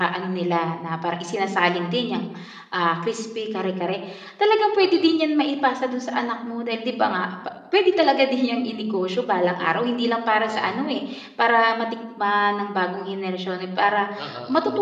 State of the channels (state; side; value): identical; both; correlation 1.00